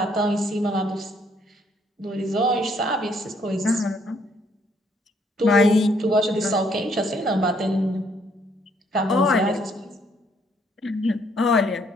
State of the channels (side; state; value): both; normal; correlation 0.68